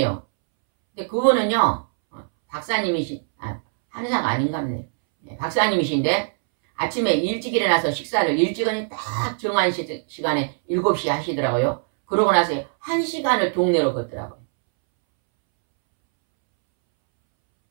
근데 그거는요, 한의사가 아닌가 보네. 박사님이신데, 아침에 일찍 일어나서 식사를 일찍은 딱 정한 시간에 7시에 하시더라고요. 그러고 나서 1시간을 동네로 걷더라고요.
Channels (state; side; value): silent; left; 64 dB below the other